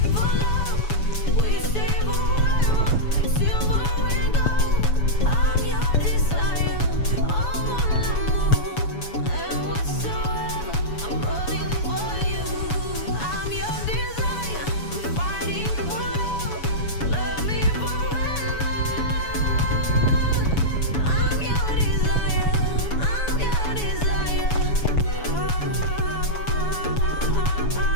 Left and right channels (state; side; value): late; right; 7.1 ms